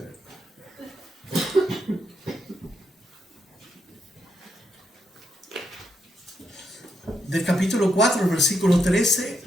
del capítulo 4, el versículo 13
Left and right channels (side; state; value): both; normal; correlation 0.80